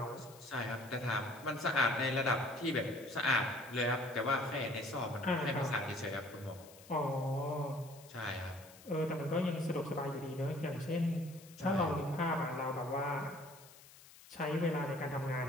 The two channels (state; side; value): noise; left; hiss, 21 dB below the sound